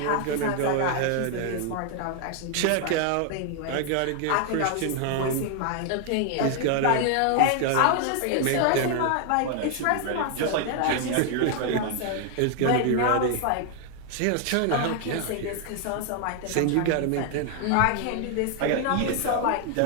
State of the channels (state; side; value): different; both; correlation 0.00